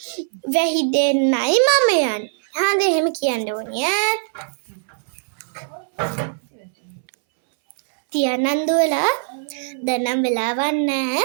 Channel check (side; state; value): left; silent; 63 dB below the other